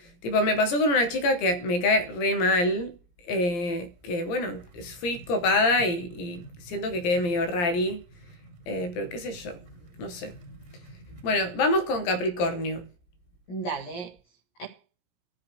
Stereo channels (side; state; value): right; late; 17 ms